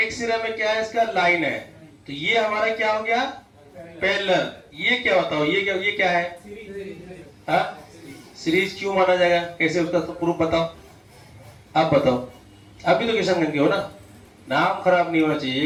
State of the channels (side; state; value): both; identical; correlation 1.00